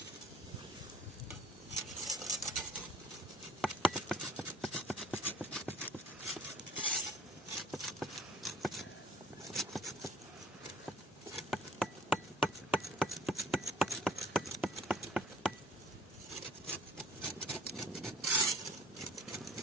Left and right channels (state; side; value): normal; both; correlation 0.52